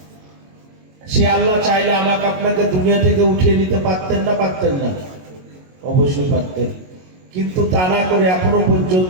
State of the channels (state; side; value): late; left; 22 ms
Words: সে আল্লাহ চাইলে আমাকে আপনাকে দুনিয়া থেকে উঠিয়ে নিতে পারতেন না? পারতেন না? অবশ্যই পারতেন। কিন্তু তা না করে এখনো